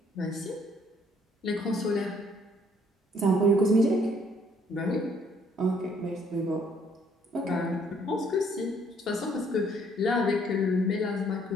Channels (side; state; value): both; normal; correlation 0.65